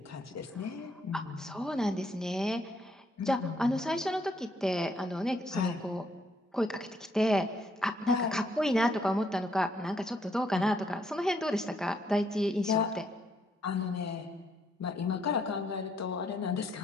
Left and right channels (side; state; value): both; normal; correlation 0.71